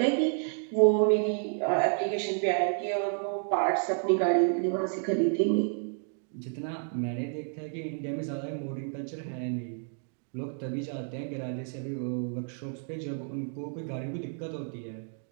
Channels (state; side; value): silent; left; 55 dB below the other